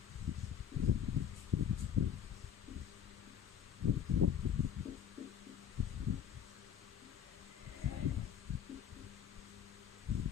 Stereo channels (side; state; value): right; quieter; 8.8 dB